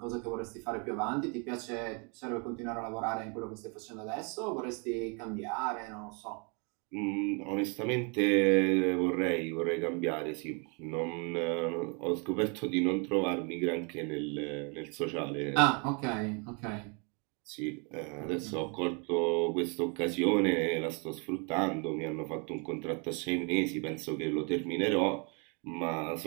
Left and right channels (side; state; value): left; quieter; 34.7 dB